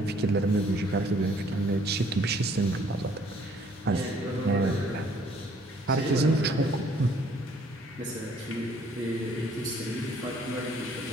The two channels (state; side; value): normal; both; correlation 0.61